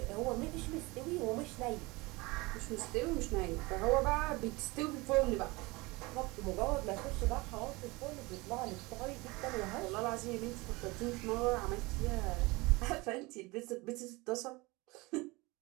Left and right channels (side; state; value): left; quieter; 23.7 dB